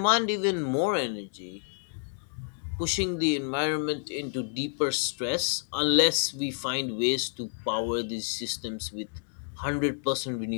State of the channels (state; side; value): silent; right; 58 dB below the other